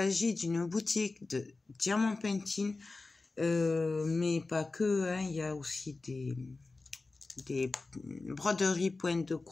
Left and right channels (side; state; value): right; quieter; 3.6 dB